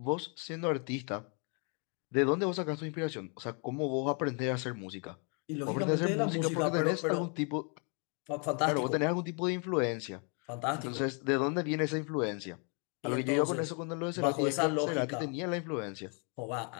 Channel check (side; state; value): right; quieter; 37.3 dB